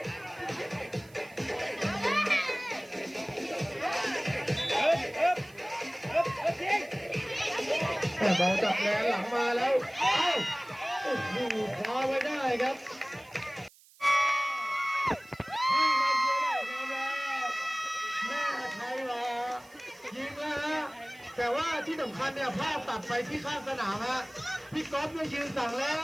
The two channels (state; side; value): noise; right; hiss, 26 dB below the sound